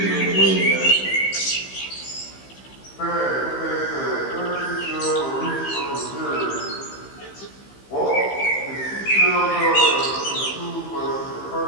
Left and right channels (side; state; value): right; late; 15 ms